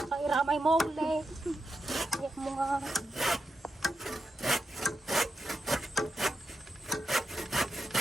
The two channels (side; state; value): both; normal; correlation 0.86